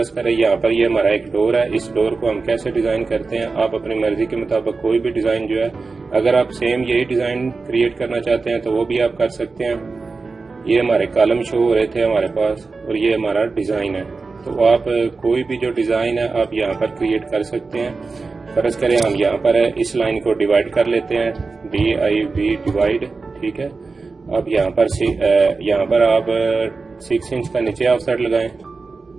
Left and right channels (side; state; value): left; quieter; 4.1 dB